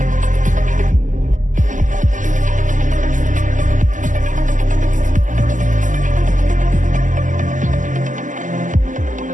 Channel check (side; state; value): left; late; 0.37 ms